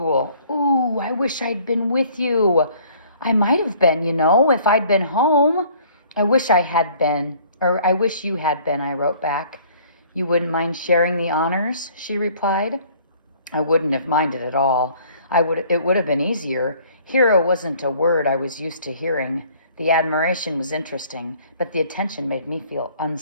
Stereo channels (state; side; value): inverted; both; correlation -0.56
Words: "Ooh, I wish I'd been with you. I might have been, if I'd been home. I wish I had been, or I wish you had been," I wrote back. "You wouldn't mind sharing the honors?" she replied. I wouldn't have minded at all. It would have been easier. Hero wasn't a word I was used to hearing. The admiration was interesting, but the attention made me feel